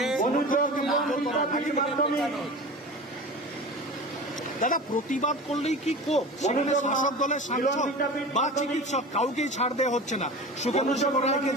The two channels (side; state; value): both; normal; correlation 0.33